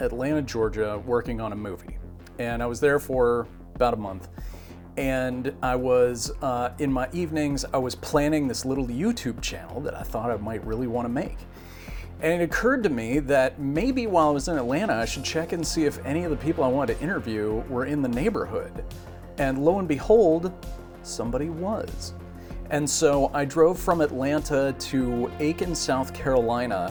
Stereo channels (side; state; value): both; identical; correlation 1.00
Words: Georgia, working on a movie. And I was there for about a month. And I was, in my evenings, I was planning this little YouTube channel that I thought I might really want to make. And it occurred to me that maybe while I was in Atlanta, I should check and see if any of the people I wanted to interview were in the neighborhood. And lo and behold, somebody was. And so I drove from Atlanta to Aiken, South